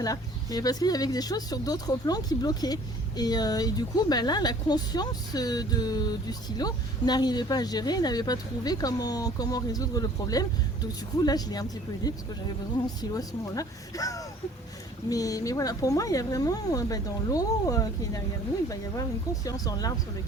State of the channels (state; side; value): normal; both; correlation 0.53